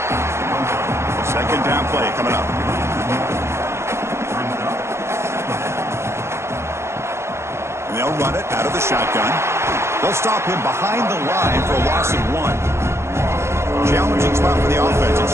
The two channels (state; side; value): late; left; 0.13 ms